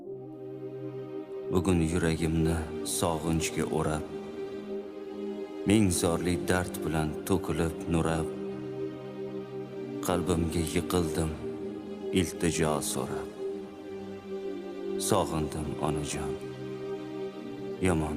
Bugun yuragimni sog'inchga o'rab, ming zorli dard bilan to'kilib nurab, qalbimga yiqildim iltijo so'rab. Sog'indim onajon, yomon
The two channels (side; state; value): both; identical; correlation 1.00